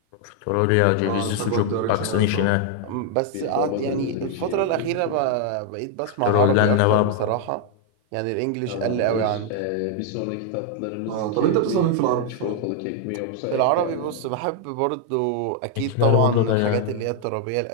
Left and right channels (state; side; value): different; both; correlation 0.00